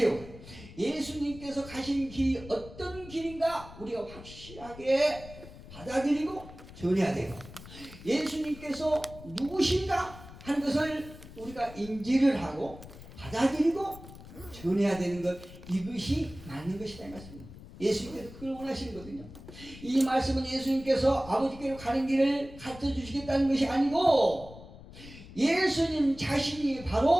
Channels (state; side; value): noise; left; rumble, 16 dB below the sound